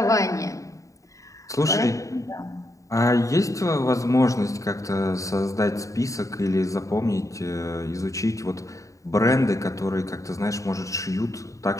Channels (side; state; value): right; late; 0.16 ms